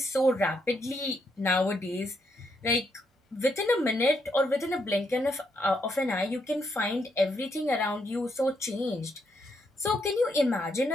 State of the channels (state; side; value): normal; both; correlation 0.77